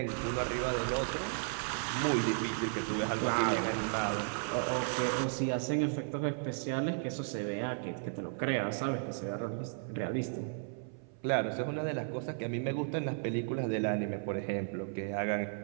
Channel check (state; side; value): silent; left; 55 dB below the other